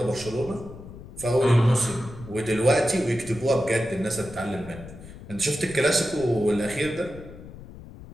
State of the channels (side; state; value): left; noise; rumble, 15 dB below the sound